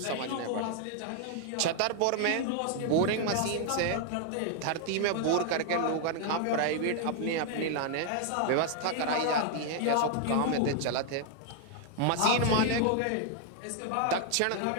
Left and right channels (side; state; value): both; different; correlation 0.00